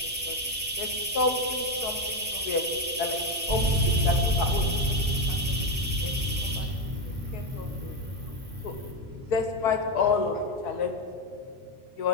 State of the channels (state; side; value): normal; both; correlation 0.09